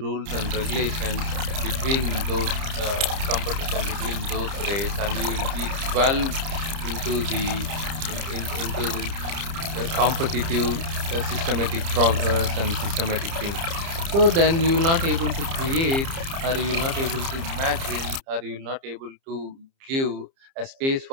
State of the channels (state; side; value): late; left; 30 ms